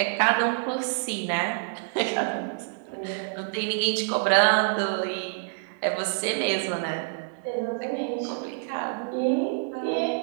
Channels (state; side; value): silent; left; digital silence